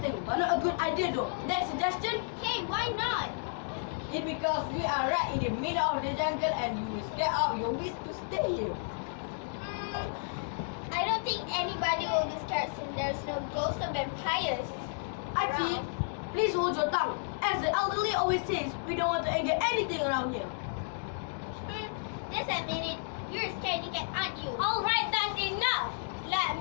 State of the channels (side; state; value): right; silent; digital silence